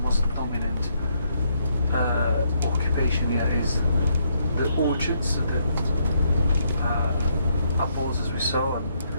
most dominant occupation here is the orchards, the apples as we saw, and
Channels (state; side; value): inverted; both; correlation -0.74